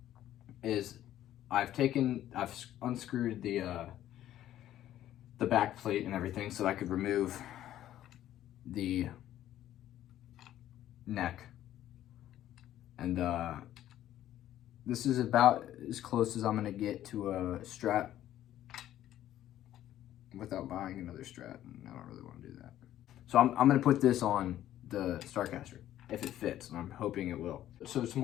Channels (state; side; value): quieter; right; 12.5 dB